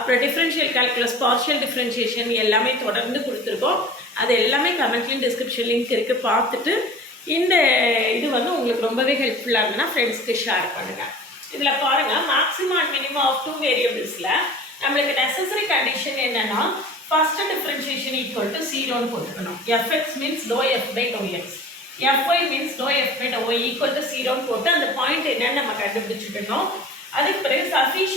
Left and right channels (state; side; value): normal; both; correlation 0.41